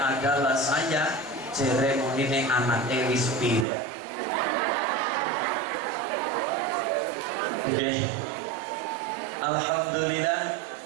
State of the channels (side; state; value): left; drops out; at 3.7 s